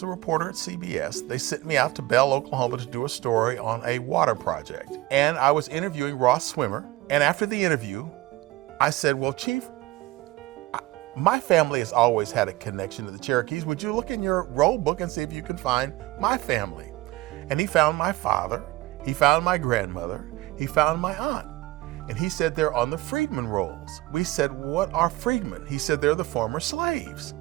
a reporter at CBS, they sent me out to Bell, Oklahoma to do a story on a water project. And I was interviewing Ross Swimmer. And after the interview, I said, well, Chief, my family has always had a connection to the Cherokees. Would you look in your roll book and see if you can find my family? And he found my father, he found my grandmother, he found my aunt. And he said they're on the freedmen rolls. We said, what are freedmen? He said they're the former slaves.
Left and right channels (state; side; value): quieter; left; 18.6 dB